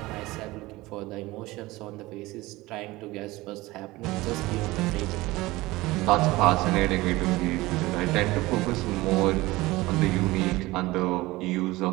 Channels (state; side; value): quieter; left; 19.9 dB